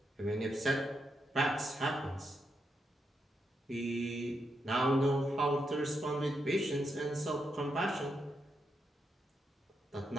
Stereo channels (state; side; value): normal; both; correlation 0.82